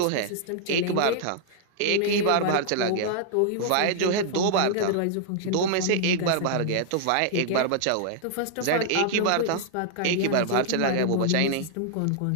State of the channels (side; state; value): both; different; correlation -0.01